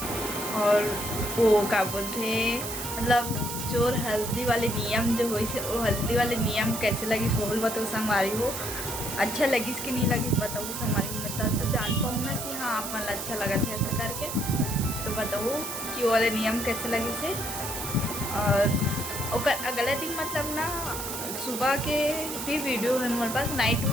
और वो क्या बोलते मतलब जो हल्दी वाले नियम जो हुई से, वो हल्दी वाले नियम कैसे लगी सोहल बताओ संगवारी हो। अच्छा लगी कि नहीं लगी बताओ संगवारी हो, मैं तो जान पाऊँ ना कि हाँ आप मन अच्छा लगा था ऐसा करके, तो बताओ कि वो वाले नियम कैसे लगे से। और अगले दिन मतलब ना सुबह के भी वीडियो है हमारे पास, नाइट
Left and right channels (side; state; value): right; noise; hiss, 6 dB below the sound